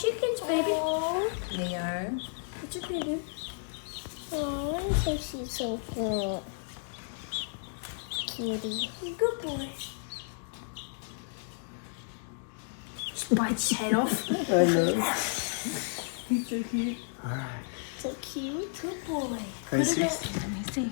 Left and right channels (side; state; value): right; silent; digital silence